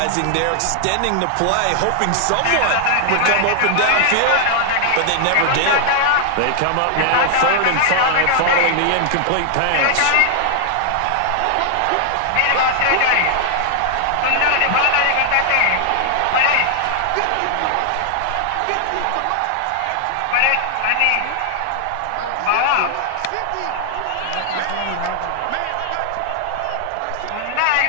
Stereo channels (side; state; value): both; different; correlation 0.00